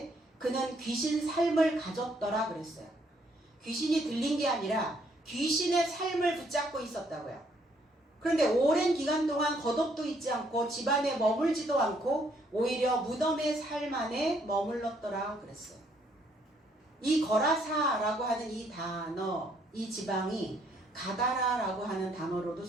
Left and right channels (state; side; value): normal; both; correlation 0.68